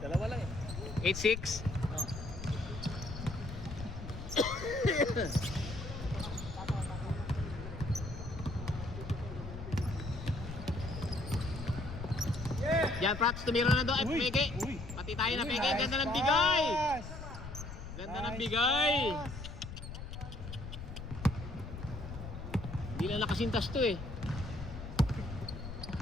lang eh. 8-6? Yan, Prats, tumira na doon. Ay, Uy, peke. uy. Pati tayo na Uy, peke. nice Ganda ng pass. bigay. Ganda ng Nice bigay. pass. Hindi lang nakasintas to eh.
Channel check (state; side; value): noise; left; rumble, 9 dB below the sound